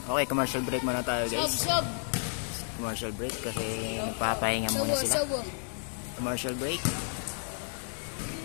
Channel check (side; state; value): right; silent; 57 dB below the other